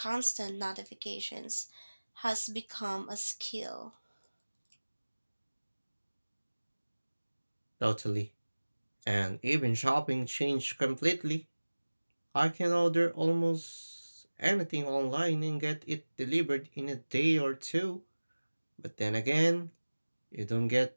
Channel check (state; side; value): inverted; both; correlation -1.00